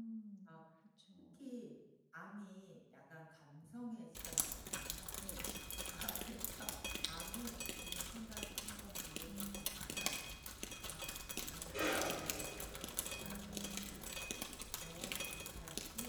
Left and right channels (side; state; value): both; identical; correlation 1.00